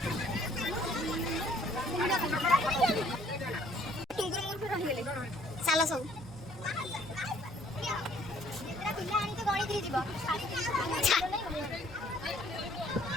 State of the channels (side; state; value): both; normal; correlation 0.60